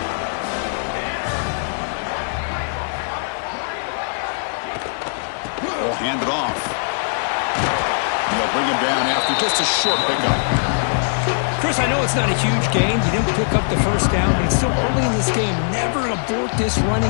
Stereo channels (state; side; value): silent; right; 65 dB below the other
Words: They'll hand it off. And they'll bring him down after just a short pickup. Chris, I know it's not a huge gain. You didn't pick up the first down, but it's still early in this game. Never abort this